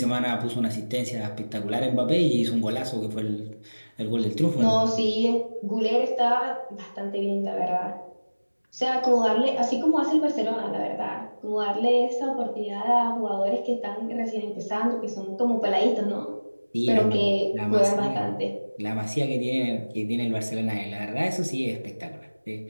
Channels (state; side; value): inverted; both; correlation -1.00